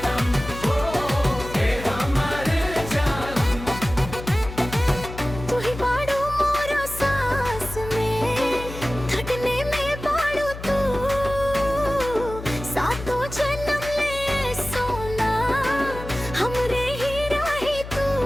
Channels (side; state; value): left; noise; hum, 11 dB below the sound